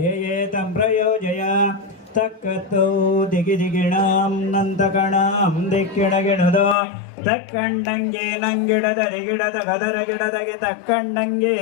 ಪ್ರಯೋಜಯ ತಕ್ಕತ್ತು ದಿಗಿದಿಗಿಣಾಂ ನಂತಕಣಾಂ ದಿಕ್ಕಿಡಗಿಡದೋ ತಕ್ಕಂಡಂಗೆ ನಂಗಿಡದರೆ ಗಿಡದ ಗದರ ಗಿಡದಗೆ ತಕ್ಕಂಡಂಗೆ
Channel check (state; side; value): drops out; right; at 6.8 s